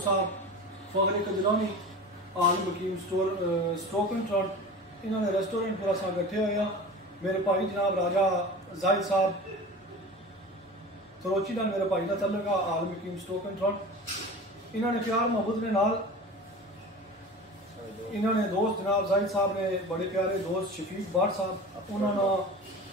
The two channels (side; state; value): both; normal; correlation 0.35